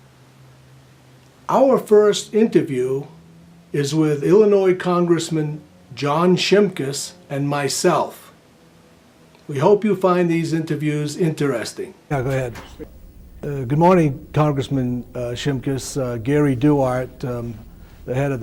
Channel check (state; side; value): identical; both; correlation 1.00